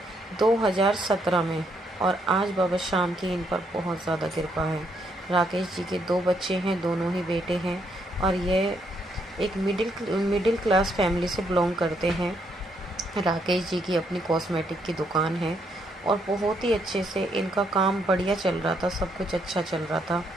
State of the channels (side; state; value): both; normal; correlation 0.74